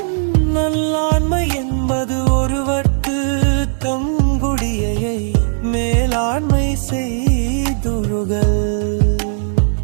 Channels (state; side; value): silent; left; digital silence